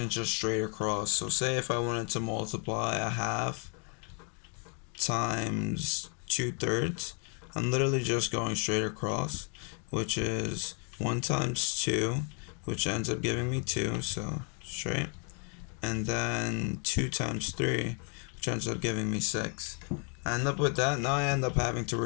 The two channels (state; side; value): quieter; right; 39.7 dB